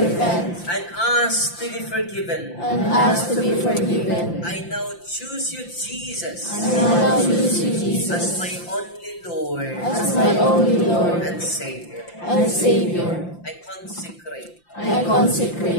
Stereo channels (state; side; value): late; right; 5.8 ms